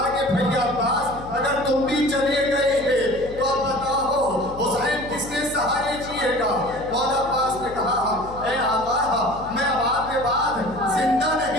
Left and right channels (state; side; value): noise; left; hum, 15 dB below the sound